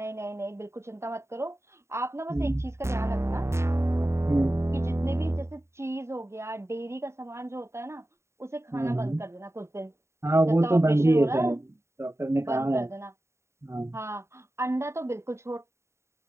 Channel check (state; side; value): late; left; 0.13 ms